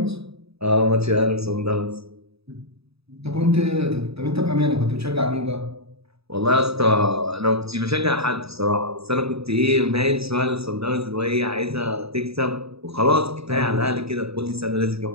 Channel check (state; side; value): late; left; 0.78 ms